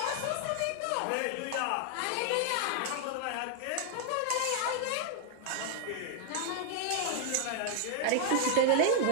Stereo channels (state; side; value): different; both; correlation 0.00